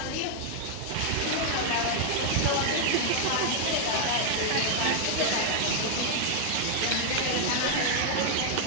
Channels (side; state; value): both; different; correlation 0.00